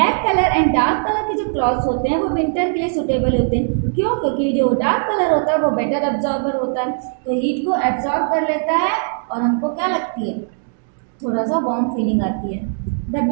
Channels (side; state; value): left; silent; 66 dB below the other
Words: colour and dark colour के जो क्लॉथ्स होते हैं वो विंटर के लिए सूटेबल होते हैं, क्यों, क्योंकि जो डार्क कलर होता है वो बेटर एब्जॉर्बर होता है, तो हीट को एब्जॉर्ब कर लेता है और हमको क्या लगती है, थोड़ा सा वार्म फीलिंग आती है। The